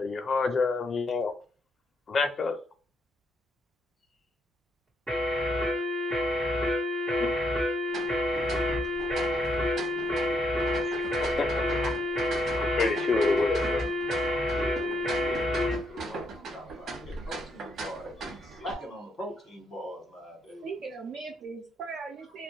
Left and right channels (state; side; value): normal; both; correlation 0.76